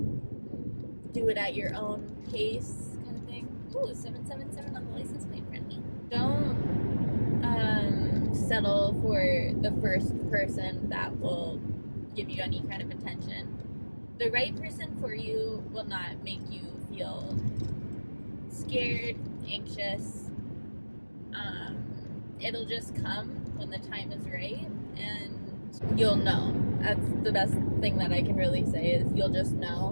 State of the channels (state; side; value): inverted; both; correlation -1.00